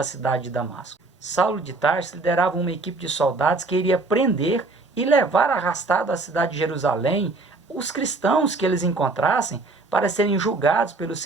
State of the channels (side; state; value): left; quieter; 3.4 dB